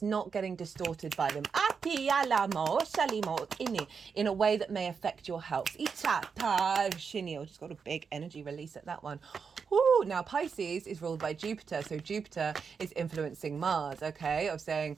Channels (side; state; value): left; quieter; 5.9 dB